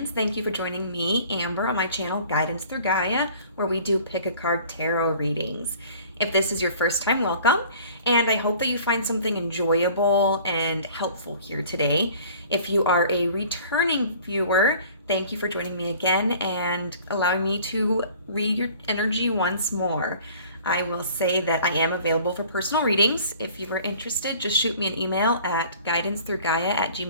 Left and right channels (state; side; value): inverted; both; correlation -0.50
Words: Thank you for joining me, Amber, on my channel, Guidance Through Gaia, where we do pick a card tarot readings. If this is your first time, welcome, and I hope that you find something enjoyable and helpful here today. If you are a returning viewer, thank you for joining me again and allowing me to read your energy once more. I will say that I am available for personal readings. If you are interested, just shoot me an email at